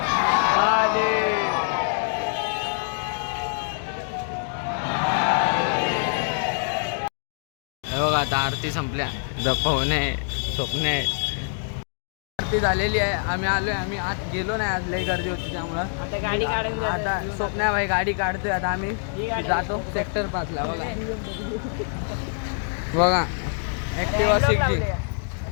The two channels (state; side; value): silent; right; 62 dB below the other